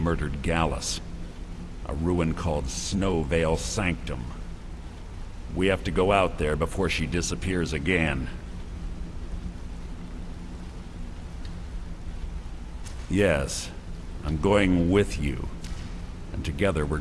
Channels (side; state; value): both; identical; correlation 1.00